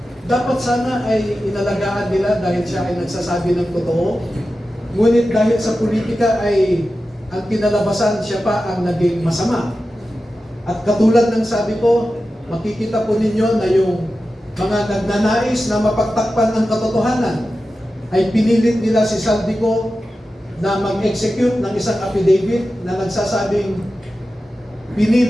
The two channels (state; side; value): normal; both; correlation 0.93